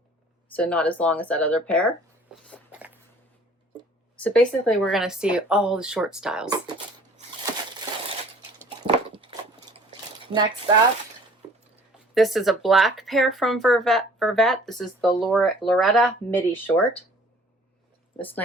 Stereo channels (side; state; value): both; normal; correlation 0.51